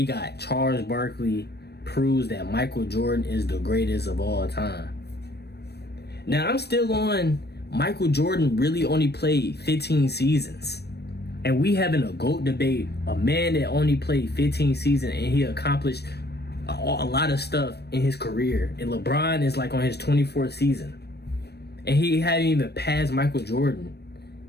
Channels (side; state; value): right; late; 0.47 ms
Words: got Charles Barkley proves that Michael Jordan is the greatest of all time. Now, I'm still on Michael Jordan really only played 15 seasons. And we having a GOAT debate, a man that only played 15 seasons and he accomplished a lot of stuff in his career. And LeBron is like on his 24th season. And he hadn't even passed Michael Jordan.